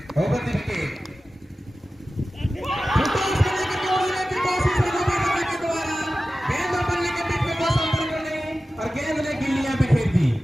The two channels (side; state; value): both; normal; correlation 0.95